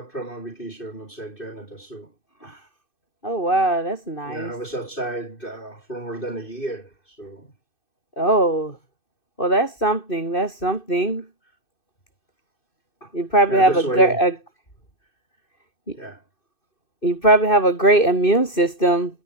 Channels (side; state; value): right; late; 2.6 ms